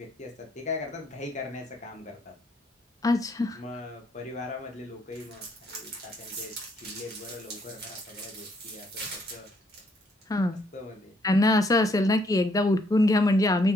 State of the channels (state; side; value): normal; both; correlation 0.69